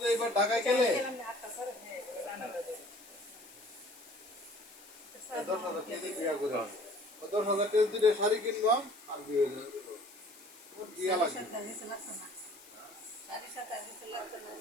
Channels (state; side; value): noise; left; hiss, 21 dB below the sound